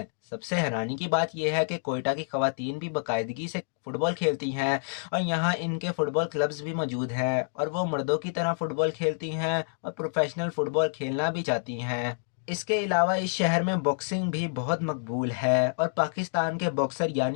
सबसे हैरानी की बात यह है कि कोयटा की ख़वातीन भी बाकायदगी से फ़ुटबॉल खेलती हैं और यहाँ इनके फुटबॉल क्लब्स भी मौजूद हैं और वो मर्दों की तरह फुटबॉल खेलती हैं और प्रोफेशनल फुटबॉल खेलना भी चाहती हैं। इसके अलावा इस शहर में बॉक्सिंग भी बहुत मकबूल है और पाकिस्तान के बॉक्सर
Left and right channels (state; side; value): silent; right; digital silence